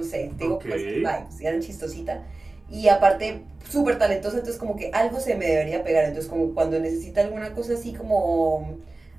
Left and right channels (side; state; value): left; quieter; 3.1 dB